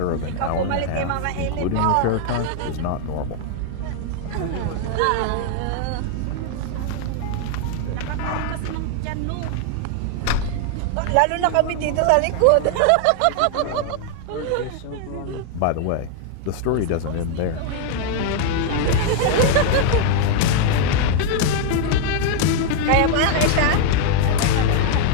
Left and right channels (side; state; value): both; different; correlation 0.00